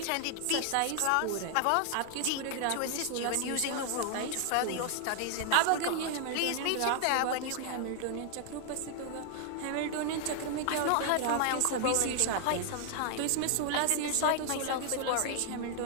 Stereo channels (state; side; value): different; both; correlation 0.00